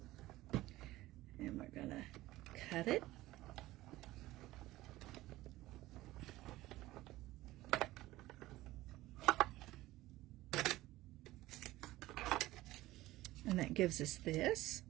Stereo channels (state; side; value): quieter; left; 17.1 dB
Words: And we're going to cut it. And that gives us this.